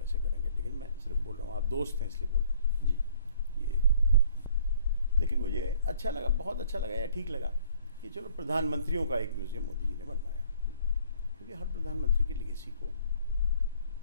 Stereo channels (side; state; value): both; inverted; correlation -0.57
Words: करेंगे, लेकिन मैं सिर्फ बोल रहा हूँ, आप दोस्त हैं इसलिए बोल रहा हूँ जी। ये लेकिन मुझे अच्छा लगा, बहुत अच्छा लगा या ठीक लगा कि चलो प्रधानमंत्रियों का एक म्यूज़ियम मोदी जी ने बनवाया, क्योंकि हर प्रधानमंत्री की लेगेसी को